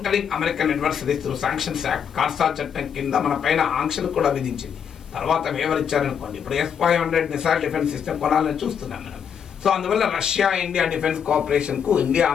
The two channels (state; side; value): quieter; right; 7.7 dB